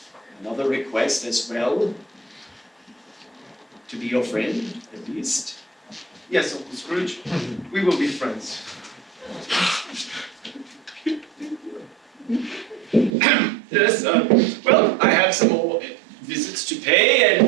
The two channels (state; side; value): drops out; left; at 13.1 s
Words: another request as well. To be your friend, at least. Yes, Uncle Scrooge. We will be friends. Yes, well, I have some more visits to pay,